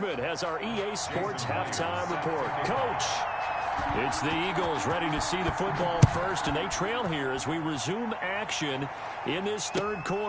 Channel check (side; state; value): both; identical; correlation 1.00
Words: has our EA Sports halftime report. Coach, it's the Eagles ready to see the football first, and they trail here as we resume action in this third